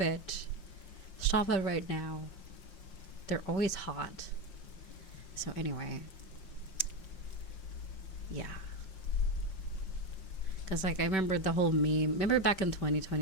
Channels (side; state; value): right; late; 5.2 ms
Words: Stop it right now. They're always hot. So anyway, yeah. Because, like, I remember the whole meme. Remember back in